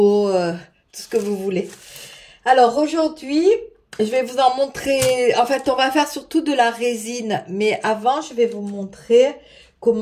tout ce que vous voulez. Alors aujourd'hui, je vais vous en montrer, en fait on va faire surtout de la résine, mais avant je vais vous montrer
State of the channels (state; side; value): identical; both; correlation 1.00